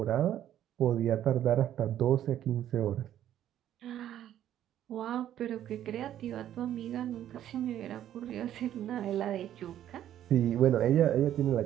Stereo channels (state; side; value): quieter; left; 11.4 dB